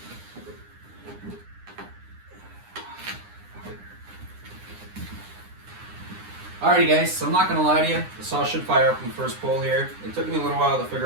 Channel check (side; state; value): left; late; 9.8 ms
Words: Alrighty guys, so I'm not going to lie to you, the saw should fire up in the first pull here. It took me a little while to